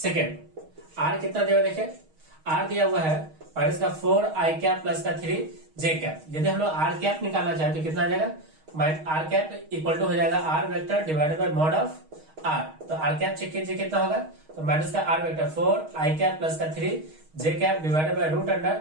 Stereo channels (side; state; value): left; late; 6.4 ms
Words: r कितना दिया देखिए आर दिया हुआ है माइनस का 4 आई कैप प्लस का 3 जे कैप। यदि हम लोग आर कैप निकालना चाहे तो कितना आ जाएगा आर कैप इक्वल टू हो जाएगा R vector divided by mod of R. तो आर कैप चेक कीजिए कितना होगा तो माइनस का R vector 4 I cap plus का 3 J cap divided by root under